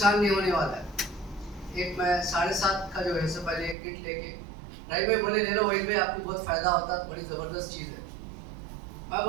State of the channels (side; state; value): left; drops out; at 3.8 s